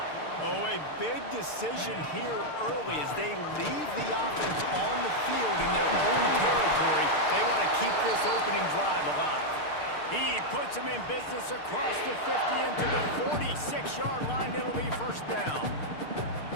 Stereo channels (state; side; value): late; right; 6.6 ms